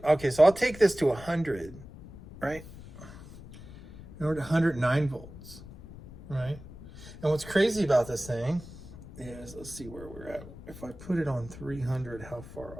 okay, so I'll take this to 100, right? And we're at 109 volts, right? And what's crazy about this thing is, let's see where we're at. If I put it on 300, how far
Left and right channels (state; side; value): noise; left; rumble, 16 dB below the sound